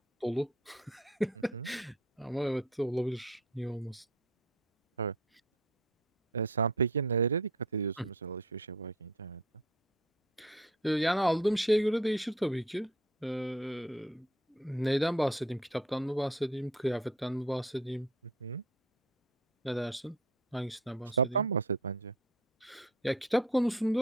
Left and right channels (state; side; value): normal; both; correlation 0.51